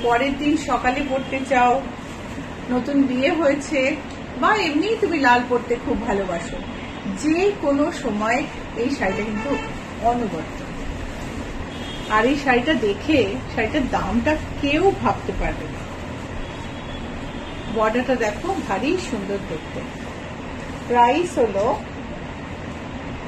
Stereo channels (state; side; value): identical; both; correlation 1.00